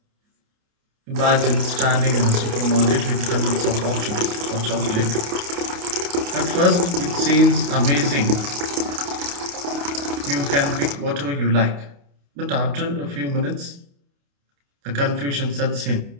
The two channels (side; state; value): left; late; 28 ms